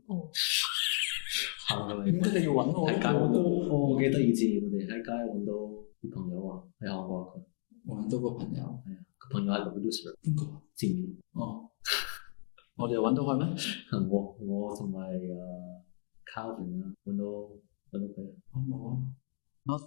哦。行過嚟。點解你要揾我？喺街揾到。我記得以前我哋喺街揾到啲朋友啊，喺韓國佢。我揾到個朋友。係啊，個朋友係個 producer。邊個？前面。哦。我哋揾到佢咩？我同埋Calvin 啊，揾到佢。我冇啊。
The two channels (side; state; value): right; silent; 55 dB below the other